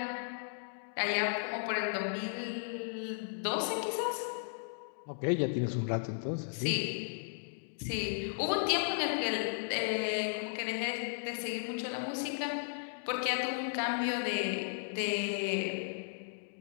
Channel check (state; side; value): silent; right; digital silence